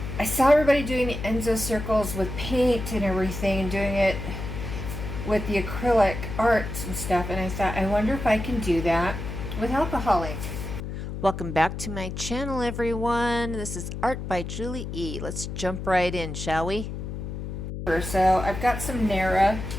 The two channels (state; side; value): noise; left; hum, 6 dB below the sound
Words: I saw everybody doing the Enso circles with paint and everything, and doing it with the acrylic arts and stuff, and I thought, I wonder if I can do that with alcohol ink. Welcome back to my channel, everyone. This is Art by Julie E. Let's jump right in, shall we? So I've got some Nara.